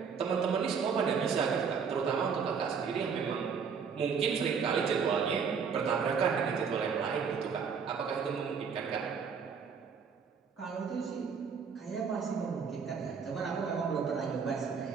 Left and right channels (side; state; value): left; quieter; 6.2 dB